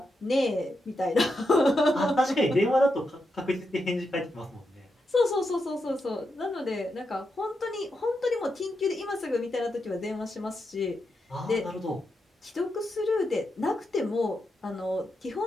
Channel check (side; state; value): both; normal; correlation 0.85